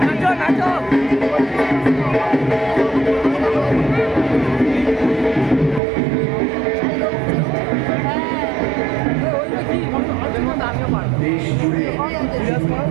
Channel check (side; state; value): left; drops out; at 5.8 s